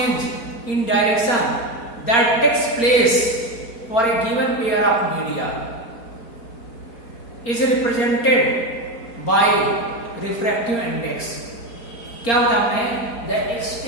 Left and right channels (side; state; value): right; late; 4.3 ms